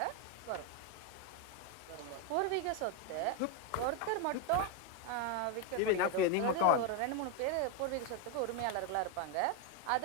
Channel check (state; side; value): different; both; correlation 0.01